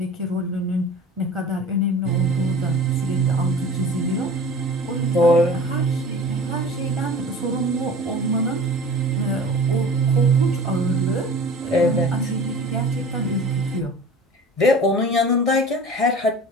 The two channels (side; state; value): both; normal; correlation 0.40